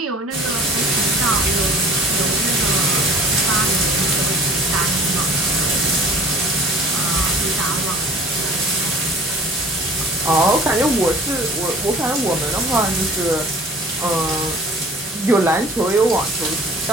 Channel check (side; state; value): both; normal; correlation 0.48